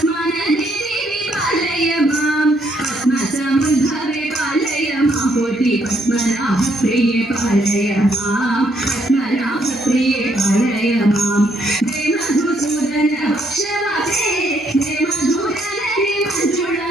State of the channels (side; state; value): both; normal; correlation 0.71